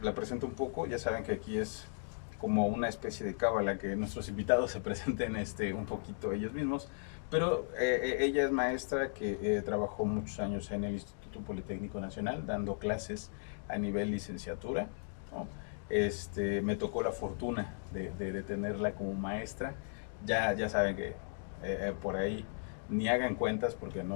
la presento un poco, ya saben que aquí es como una especie de cábala que nuestros invitados se presenten un poquito ellos mismos, pero ella es maestra que trabajó muchos años en el Instituto Politécnico Nacional dando clases a nivel licenciatura, ¿no? Me tocó la fortuna de tenerla como maestra. Ya saben que por ahí ni hagan cuentas porque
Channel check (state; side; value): silent; right; digital silence